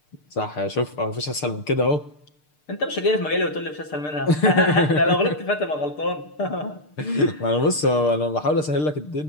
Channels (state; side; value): late; right; 6.7 ms